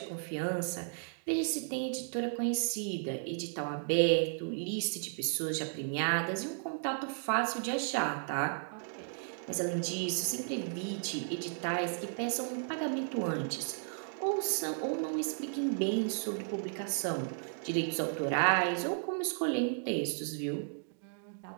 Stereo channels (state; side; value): silent; left; digital silence